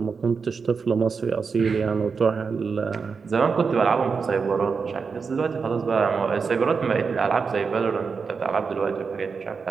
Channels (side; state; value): left; quieter; 5.3 dB